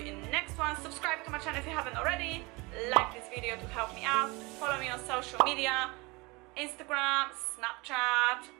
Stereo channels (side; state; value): left; quieter; 25.5 dB